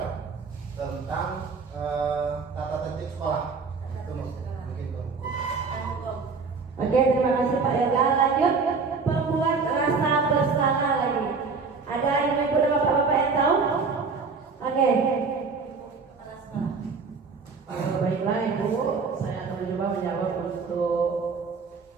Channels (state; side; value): quieter; left; 4.8 dB